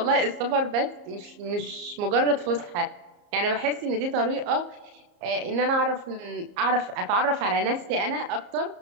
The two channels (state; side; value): late; left; 34 ms